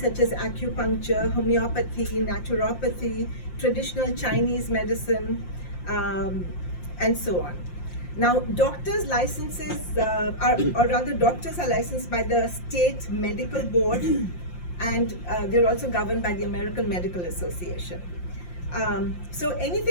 as acupuncture, homeopathy, naturopathy, traditional Chinese medicine, and so on. Now, doctors' licenses, or rather doctors are licensed by the state medical board, and they're also governed by the American Medical Association. So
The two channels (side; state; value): right; late; 5.7 ms